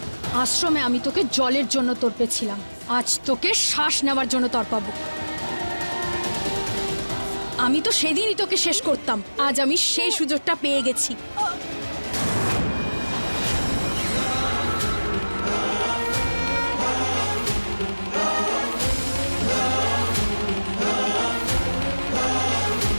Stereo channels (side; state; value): both; inverted; correlation -1.00